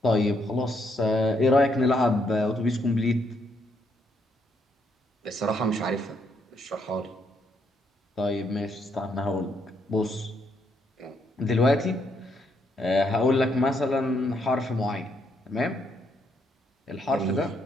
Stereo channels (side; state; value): both; normal; correlation 0.75